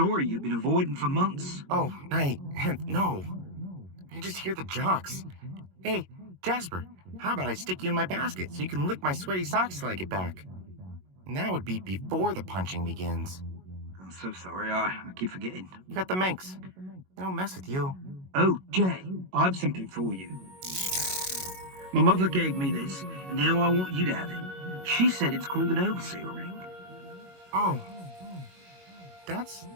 you've been avoiding for months. Oh, no. I just hear the jocks. Hey, Jasper, how about I stick you in my basket so you can lick my sweaty socks till I get back? And that would be before the punching begins. I'm so sorry, I keep forgetting. You got the minx. They don't mess with you. Oh, Jay, I have something for you. My mother gave me this, and now I want you to have it. She said it's called an overseer ring. Oh, that's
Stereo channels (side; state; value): left; late; 22 ms